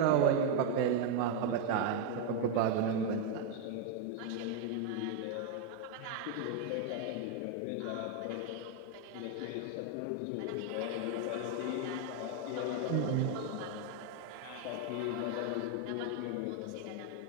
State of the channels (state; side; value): different; both; correlation 0.01